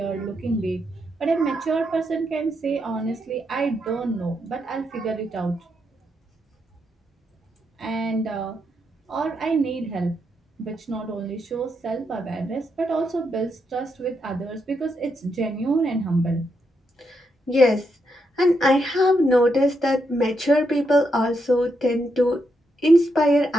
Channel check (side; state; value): both; normal; correlation 0.81